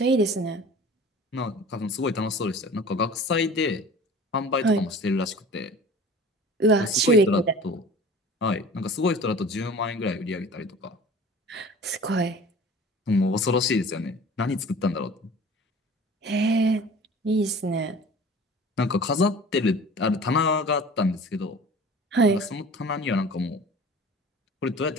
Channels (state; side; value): normal; both; correlation 0.43